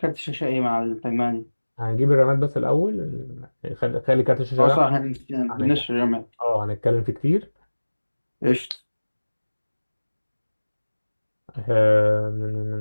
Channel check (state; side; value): inverted; both; correlation -1.00